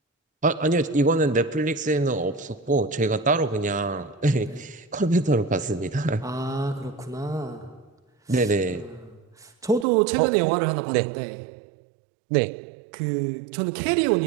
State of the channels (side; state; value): left; drops out; at 9.9 s